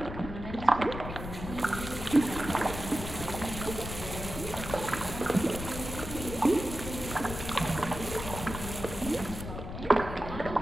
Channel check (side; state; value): left; noise; rumble, 8 dB below the sound